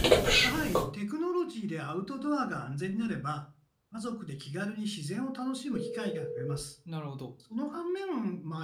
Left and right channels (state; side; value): identical; both; correlation 1.00